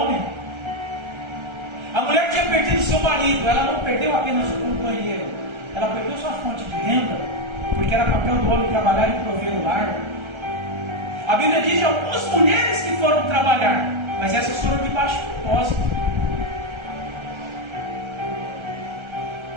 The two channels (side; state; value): left; late; 1.3 ms